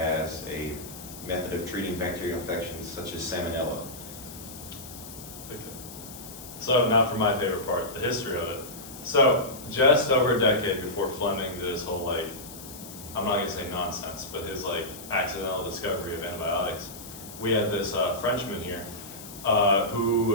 a method of treating bacterial infections such as salmonella. Okay. So now for my favorite part, the history of it. So just over a decade before Fleming did his whole, like, I'm not gonna say nonsense, but his like accidental discovery of antibiotics, we had this Frenchman here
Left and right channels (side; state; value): left; noise; hiss, 14 dB below the sound